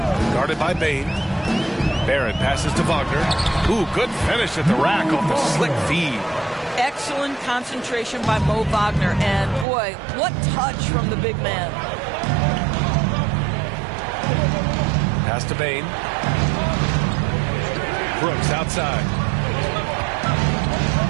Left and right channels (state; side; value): drops out; left; at 9.7 s